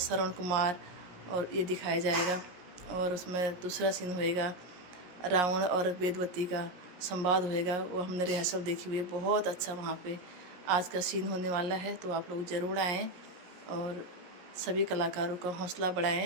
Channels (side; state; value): left; late; 17 ms